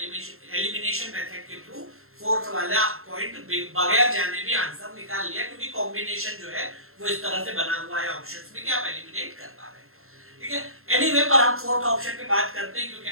मेथड के थ्रू फोर्थ वाला पॉइंट बगैर जाने भी आंसर निकाल लिया, क्योंकि कॉम्बिनेशन जो है वो इस तरह से बना हुआ है ऑप्शंस में कि आप एलिमिनेट कर पा रहे हैं, ठीक है। एनीवे, पर हम फोर्थ ऑप्शन पे बात करते हैं, क्योंकि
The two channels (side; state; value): left; late; 0.62 ms